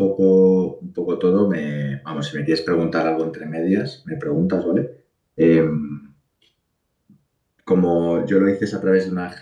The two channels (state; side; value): identical; both; correlation 1.00